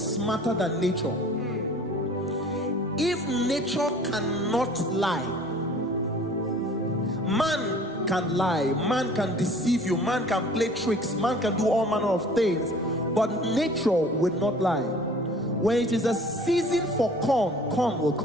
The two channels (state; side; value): normal; both; correlation 0.49